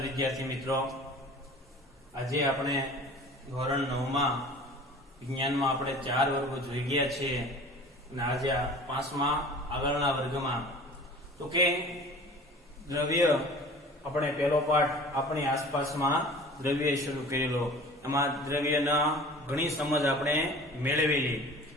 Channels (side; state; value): both; normal; correlation 0.43